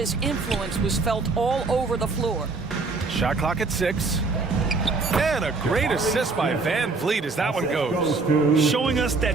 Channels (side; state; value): left; quieter; 3.9 dB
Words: influence was felt all over the floor. Shot clock at 6. And a great assist by Van Vliet as that one goes. Showing us